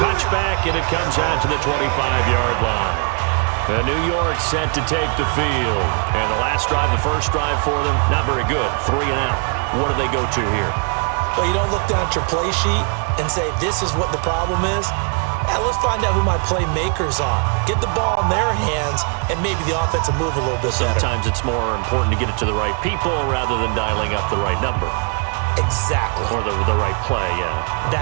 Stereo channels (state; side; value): quieter; left; 39.2 dB